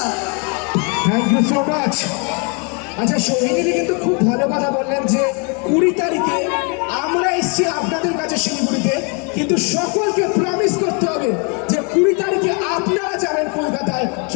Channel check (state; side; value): quieter; right; 34.9 dB